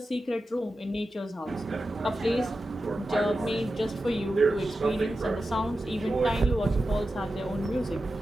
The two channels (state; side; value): normal; both; correlation 0.92